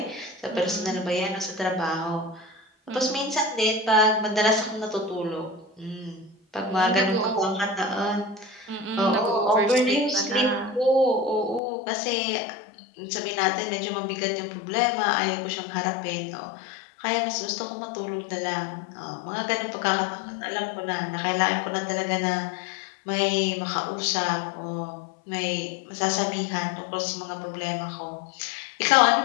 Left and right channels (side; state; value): right; drops out; at 11.6 s